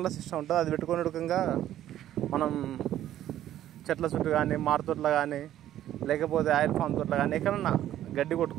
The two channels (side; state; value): left; quieter; 12.3 dB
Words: సిస్టమ్ ఉంటుంది. అది పెట్టుకునే రకంగా మనం చెట్ల చుట్టూ కానీ మారుతోట్ల కానీ లేకపోతే ఆయిల్ ఫామ్ తోట్ల కానీ ఎక్కడన్నా గడ్డి